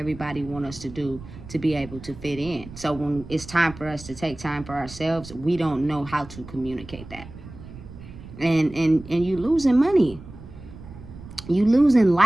wants us to do to be able to fit in. So when it's time for us to take time for ourselves, we don't know how to communicate that. And you losing money. You losing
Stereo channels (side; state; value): right; noise; rumble, 16 dB below the sound